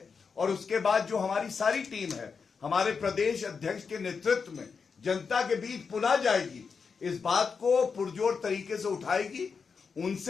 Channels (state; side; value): quieter; right; 5.5 dB